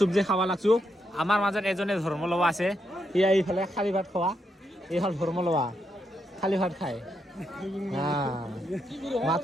খাব লাগছো আমাৰ মাজত এজনে ধৰ্ম লোৱা আছে ইয়া এইফালে খালী ভাত খোৱা এইফাল ধৰ্ম লোৱা খালী ভাত খায়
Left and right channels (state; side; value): normal; both; correlation 0.81